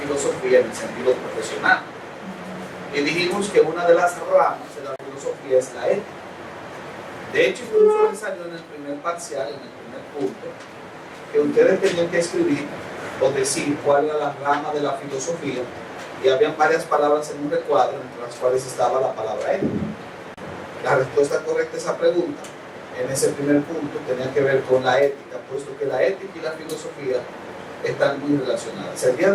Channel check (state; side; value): identical; both; correlation 1.00